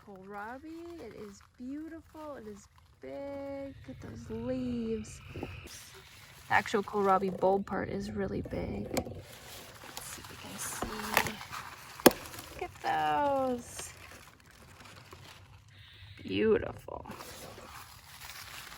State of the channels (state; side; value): identical; both; correlation 1.00